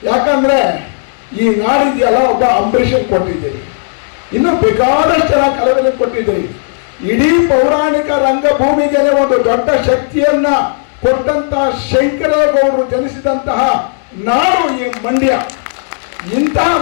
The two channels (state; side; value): silent; right; digital silence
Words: ಯಾಕಂದ್ರೆ ಈ ನಾಡಿದೆಯಲ್ಲ, ಒಬ್ಬ ಅಂಬರೀಷನ್ ಕೊಟ್ಟಿದ್ದೀರಿ, ಇನ್ನು ಬೇಕಾದಷ್ಟು ಜನ ಕಲಾವಿದರು ಕೊಟ್ಟಿದ್ದೀರಿ. ಇಡೀ ಪೌರಾಣಿಕ ರಂಗಭೂಮಿಗೆ ಒಂದು ದೊಡ್ಡ ಶಕ್ತಿಯನ್ನ ಕೊಟ್ಟಂತ ಶಂಕರೇಗೌಡರು ಜನಿಸಿದಂತಹ ನಾಡು ಈ ಮಂಡ್ಯ. ಇಂತಹ